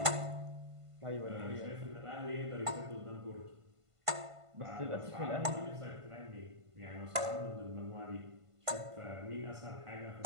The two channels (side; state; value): left; late; 1.5 ms